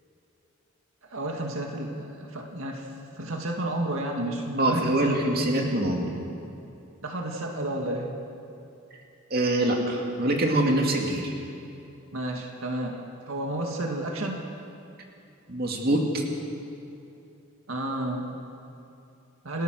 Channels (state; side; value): normal; both; correlation 0.38